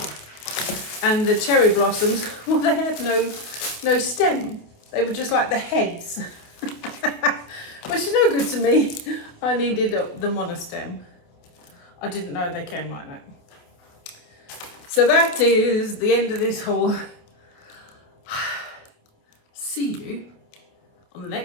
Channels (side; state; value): right; late; 28 ms